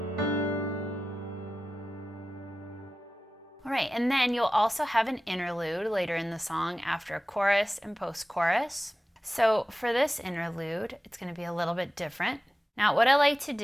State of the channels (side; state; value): both; normal; correlation 0.94